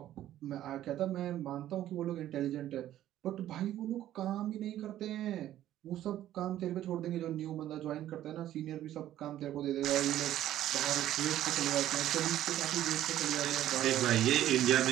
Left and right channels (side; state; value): left; quieter; 12.7 dB